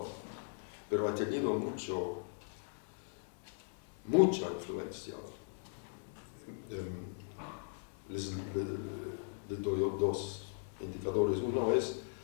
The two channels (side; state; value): right; silent; digital silence